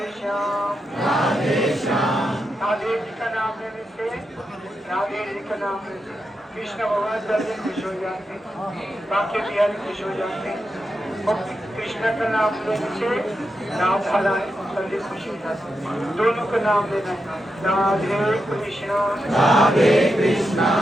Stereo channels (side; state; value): both; normal; correlation 0.87